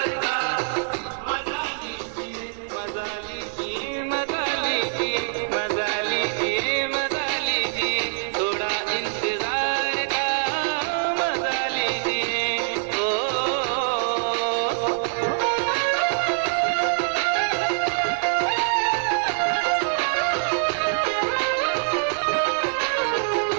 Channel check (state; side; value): silent; left; 62 dB below the other